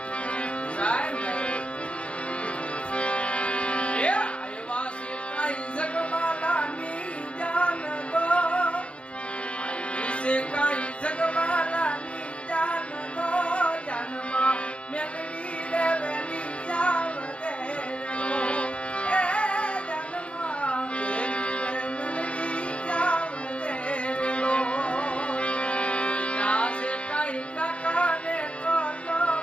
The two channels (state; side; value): late; right; 0.060 ms